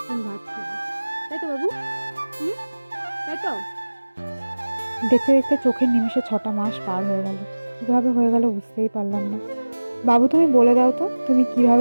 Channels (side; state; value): both; inverted; correlation -1.00